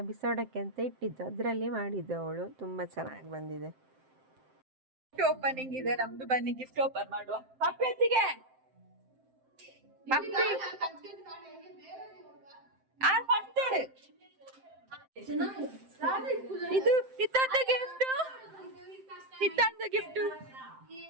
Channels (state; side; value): late; left; 7.7 ms